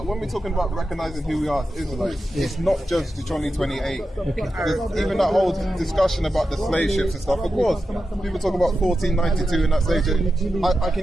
when we're talking about recognizing who we are as Israelites, it's not just Deuteronomy 28. Even that whole discussion about the slave ships and stuff. Of course, people talk about 1492 and that stage. I can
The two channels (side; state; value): both; normal; correlation 0.90